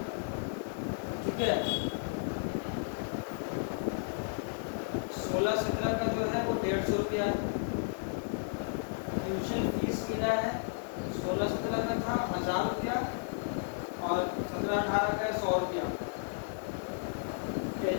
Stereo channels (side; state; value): right; silent; digital silence